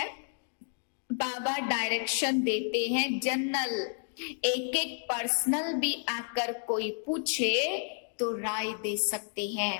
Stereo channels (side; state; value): right; silent; 57 dB below the other